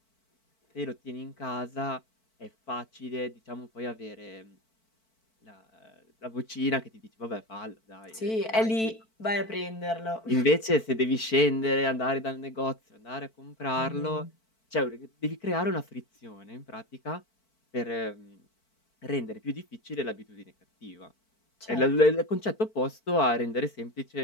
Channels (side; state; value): right; late; 4.5 ms